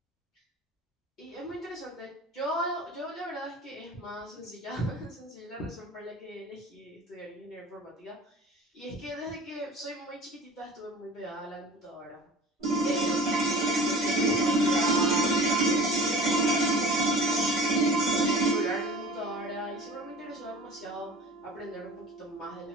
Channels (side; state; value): both; normal; correlation 0.41